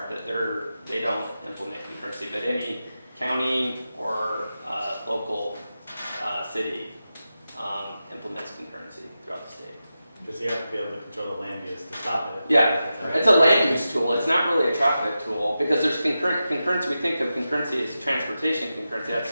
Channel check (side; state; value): both; inverted; correlation -0.91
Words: but they don't implement concurrency. But any county or local city implements concurrency throughout the state. Because you have to be able to control the land use to stop it. Yeah, it's a land use tool. It's not really a traffic tool because there's concurrency. We think of concurrency as transportation concurrency.